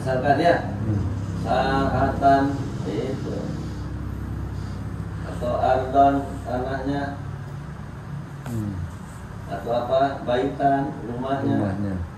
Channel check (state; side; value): identical; both; correlation 1.00